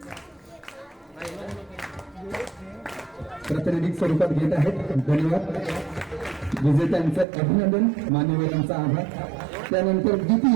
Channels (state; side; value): drops out; left; at 7.2 s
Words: प्रातिनिधिक स्वरूपात घेत आहेत. धन्यवाद. विजेत्यांचं अभिनंदन, मान्यवरांचा आभार. त्यानंतर